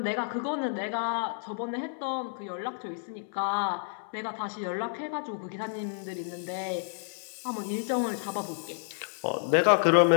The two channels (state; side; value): silent; right; 58 dB below the other